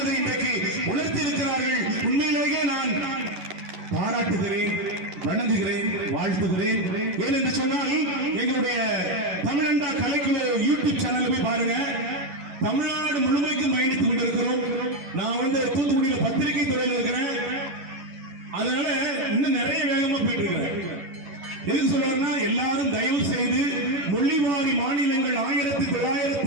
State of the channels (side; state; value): left; late; 11 ms